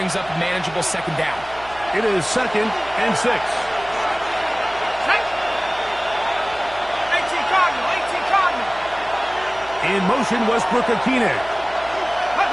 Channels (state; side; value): noise; right; hum, 20 dB below the sound